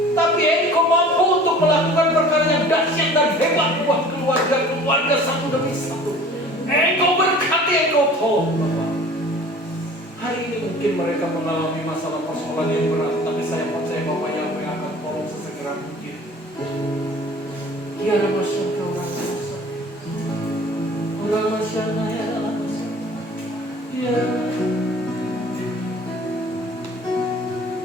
Tapi Engkau mampu untuk melakukan perkara yang dahsyat dan hebat buat keluarga satu demi satu. Engkau berkati, Engkau tolong Bapak. Hari ini mungkin mereka mengalami masalah persoalan yang berat, tapi saya percaya Bapak yang akan tolong sesegera mungkin. Ya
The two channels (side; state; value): both; normal; correlation 0.46